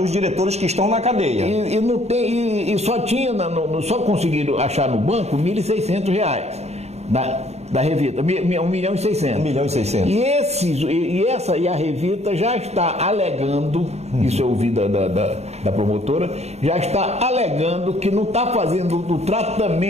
diretores que estão na cadeia. E só tinha, só conseguiram achar no banco 1.600 reais. Da Revita, 1.600.000. 1.600.000. E a Revita já está alegando, isso eu ouvi da promotora, já está alegando que não está fazendo o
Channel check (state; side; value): late; left; 0.31 ms